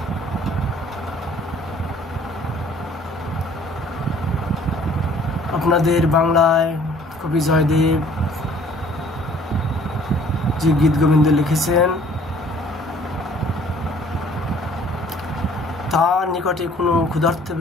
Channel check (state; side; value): normal; both; correlation 0.56